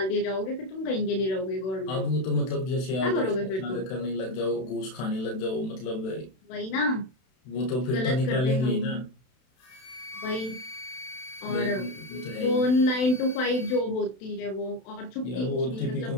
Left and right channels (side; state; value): right; late; 32 ms